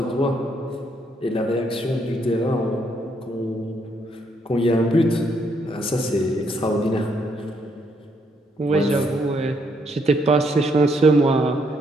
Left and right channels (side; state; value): both; normal; correlation 0.73